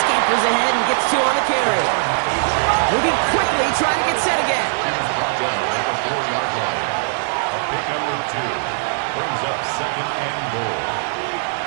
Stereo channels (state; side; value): silent; left; digital silence